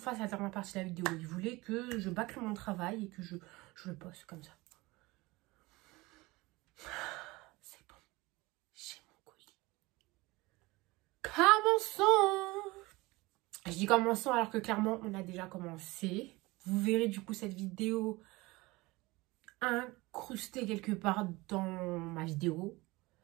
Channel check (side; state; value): left; quieter; 21.8 dB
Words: la dernière partie de la vidéo. Il voulait que je bâcle mon travail et que je le poste comme ça. C'est bon. J'ai mon colis. Commençons. Je dis commençons alors que clairement on a déjà commencé. Vous verrez du coup cette vidéo incrustée quelque part dans ma vidéo.